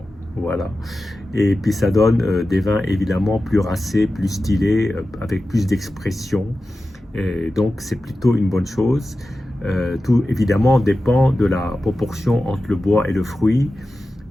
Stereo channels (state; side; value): normal; both; correlation 0.93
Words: Voilà. Et puis ça donne des vins évidemment plus racés, plus stylés, avec plus d'expression. Et donc c'est plutôt une bonne chose. Tout évidemment dépend de la proportion entre le bois et le fruit,